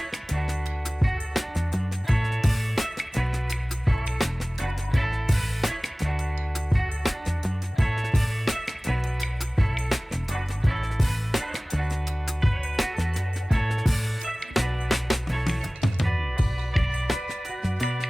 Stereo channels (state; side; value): normal; both; correlation 0.98